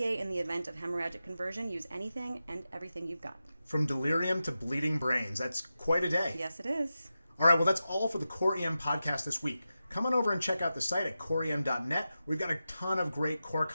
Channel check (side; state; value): both; inverted; correlation -0.92